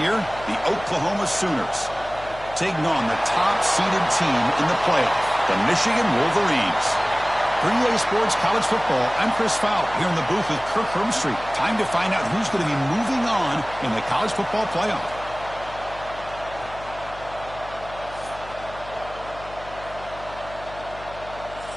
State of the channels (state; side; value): noise; left; hum, 17 dB below the sound